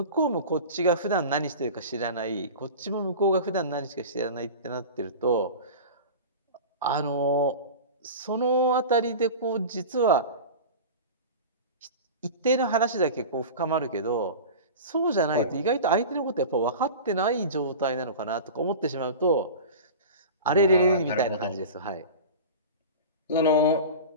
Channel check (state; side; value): inverted; both; correlation -0.32